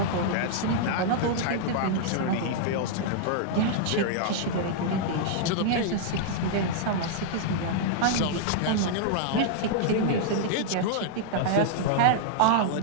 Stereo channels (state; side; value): different; both; correlation -0.01